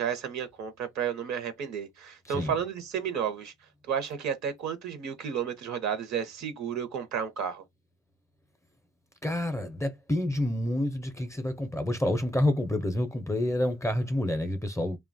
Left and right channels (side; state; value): both; normal; correlation 0.64